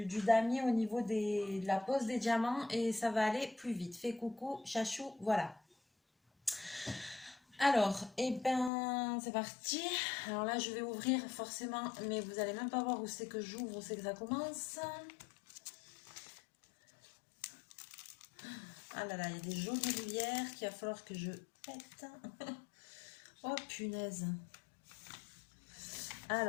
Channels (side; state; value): right; drops out; at 8.7 s